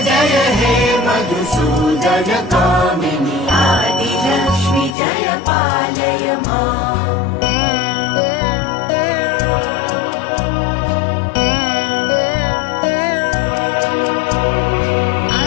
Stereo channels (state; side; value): drops out; right; at 5.0 s